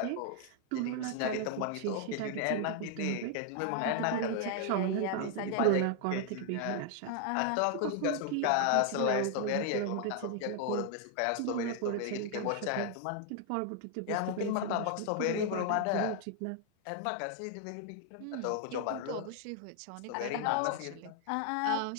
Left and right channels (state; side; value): different; both; correlation 0.00